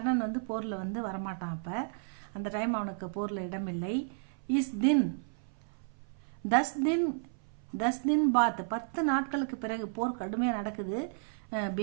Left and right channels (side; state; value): left; silent; 55 dB below the other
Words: போரில் வரமாட்டான். அப்போ அந்த டைம் அவனுக்கு போரில் இடமில்லை. இஸ் தின் 10 दिन பாத், 10 நாட்களுக்கு பிறகு போர் கடுமையாக நடக்குது.